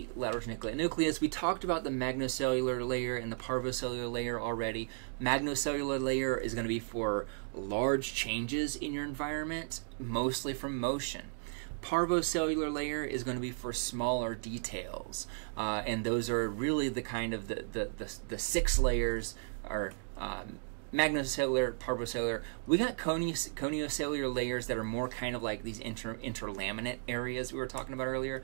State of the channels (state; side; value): silent; left; digital silence